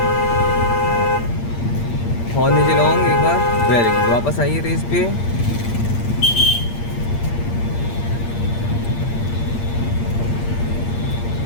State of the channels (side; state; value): right; late; 8.6 ms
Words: लॉन्ग एक बार, वेरी गुड। वापस आइए रेस पे,